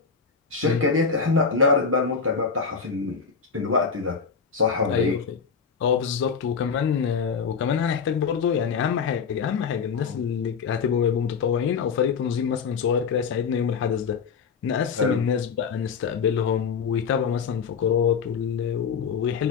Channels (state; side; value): quieter; right; 5.9 dB